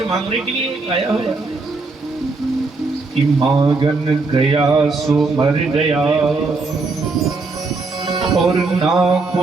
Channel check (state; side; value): quieter; left; 3.8 dB